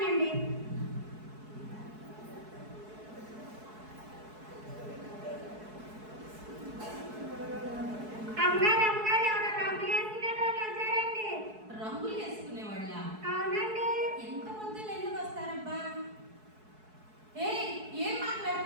అమ్మగారు ఎవరో రంగులు వేసుకునే వాళ్ళు వచ్చారండి. రంగులు వేసుకునేవాళ్ళ? అవునండి. ఎంత పొద్దున్న ఎందుకు వస్తారబ్బా? ఏం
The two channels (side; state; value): left; late; 4.7 ms